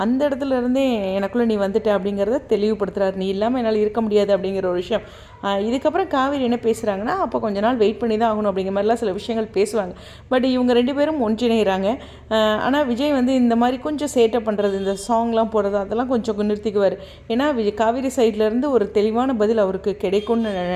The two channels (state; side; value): identical; both; correlation 1.00